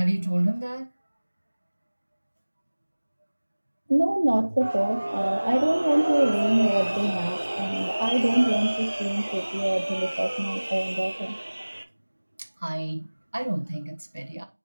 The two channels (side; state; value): both; inverted; correlation -1.00